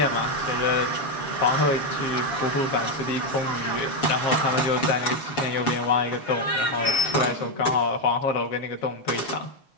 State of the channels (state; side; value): late; right; 7.0 ms